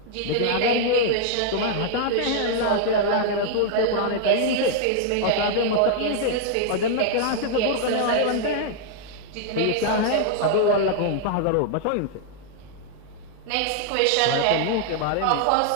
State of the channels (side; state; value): both; different; correlation -0.01